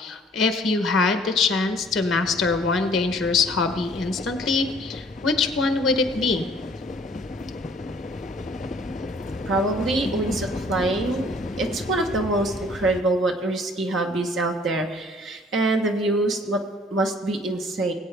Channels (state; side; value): normal; both; correlation 0.57